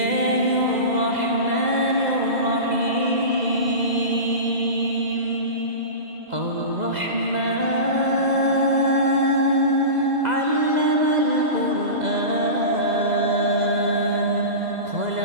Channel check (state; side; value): late; left; 2.0 ms